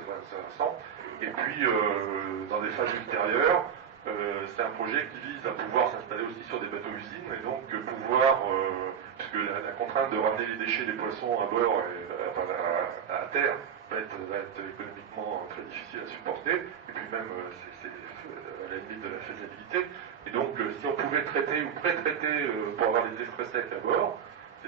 Et puis, dans des phases ultérieures, c'est un projet qui vise à pouvoir s'installer aussi sur des bateaux-usines et donc pouvoir, puisque la contrainte de ramener les déchets des poissons à bord et à terre va être économiquement très difficile à supporter, et puis même c'est à la limite de la faisabilité. Et donc si on pouvait traiter ou pré-traiter pour avoir des express secs à bord,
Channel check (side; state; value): left; quieter; 7.9 dB